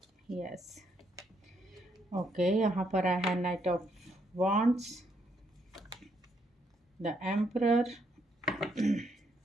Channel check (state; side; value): normal; both; correlation 0.74